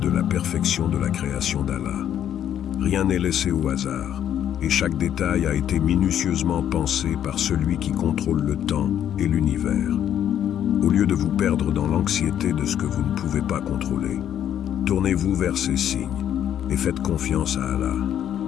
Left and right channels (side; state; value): right; quieter; 10.2 dB